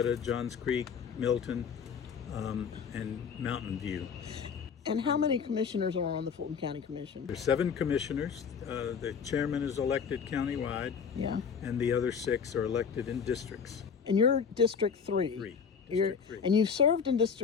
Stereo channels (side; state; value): right; quieter; 6.4 dB